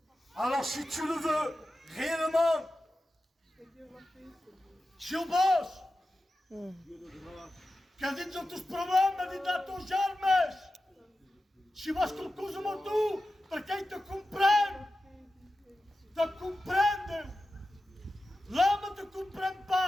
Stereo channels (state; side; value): normal; both; correlation 0.93